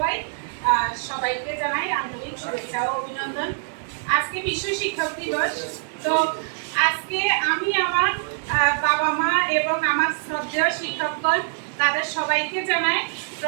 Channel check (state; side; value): silent; left; digital silence